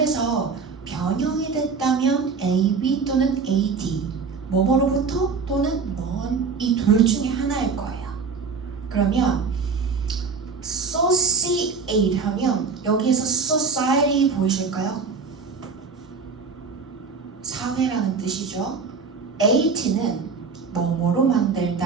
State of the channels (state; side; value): quieter; left; 5.0 dB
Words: 변형이 됐다면 ab 또는 ad, 뭐뭐로부터 또는 먼 이 둘 중에 하나일 거예요. 그러면 associate 하면 여기에서 society 보이실까요? 사회라는 뜻이죠. at는 뭐뭐로